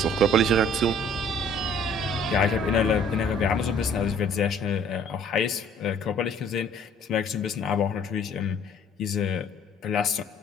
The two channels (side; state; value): both; normal; correlation 0.56